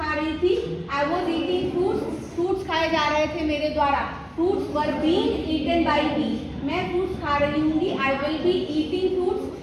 रही थी, I was eating fruits, fruits खाए जा रहे थे मेरे द्वारा, fruits were being eaten by me. मैं फ्रूट्स खा रही हूँगी, I will be eating fruits,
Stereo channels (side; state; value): both; identical; correlation 1.00